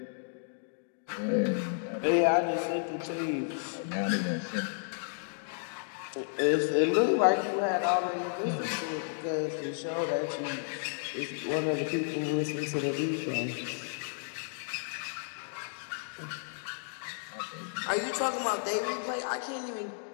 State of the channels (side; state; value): right; silent; digital silence